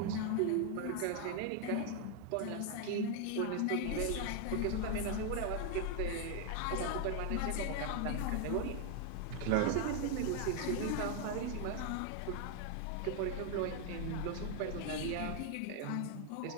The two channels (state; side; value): different; both; correlation 0.00